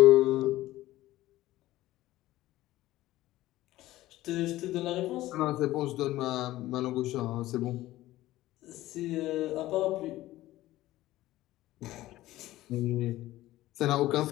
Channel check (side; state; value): right; quieter; 16.1 dB